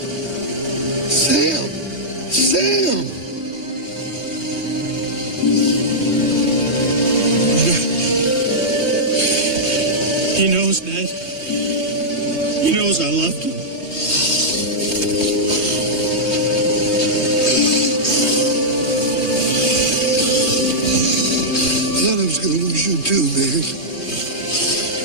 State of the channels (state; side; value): late; right; 3.2 ms